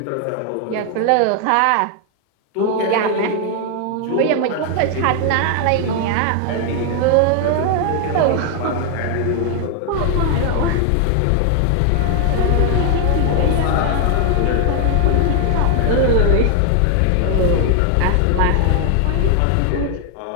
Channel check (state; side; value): different; both; correlation 0.00